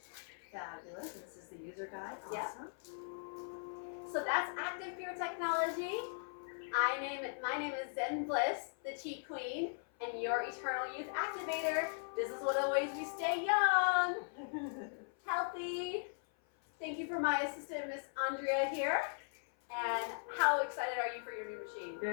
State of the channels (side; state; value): right; silent; 52 dB below the other